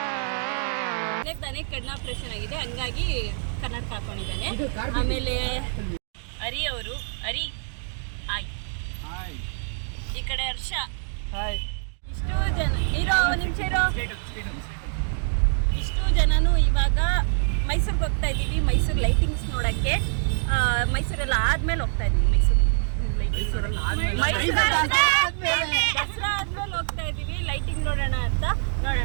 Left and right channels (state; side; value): silent; left; digital silence